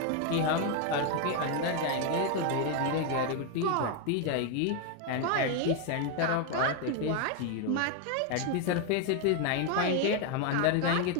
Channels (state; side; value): different; both; correlation 0.01